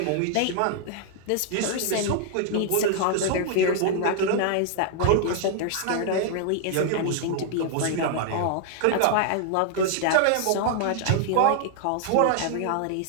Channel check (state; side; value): different; both; correlation 0.00